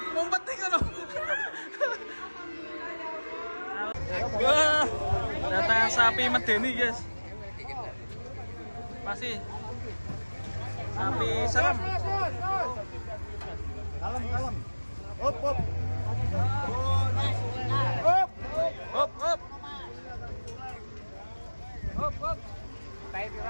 Ngumpet ning kono. Wah, datang sapi medeni, guys. Masih sapi serem. Kalem. Hop.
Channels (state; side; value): inverted; both; correlation -1.00